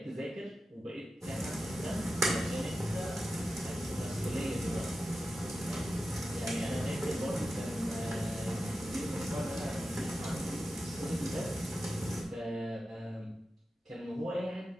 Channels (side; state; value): both; normal; correlation 0.91